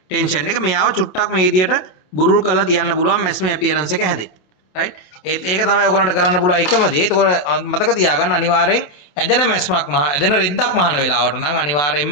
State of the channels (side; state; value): right; late; 28 ms